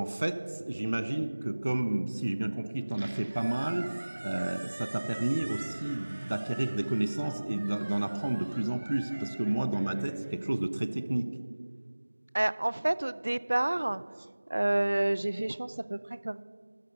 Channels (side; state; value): both; inverted; correlation -1.00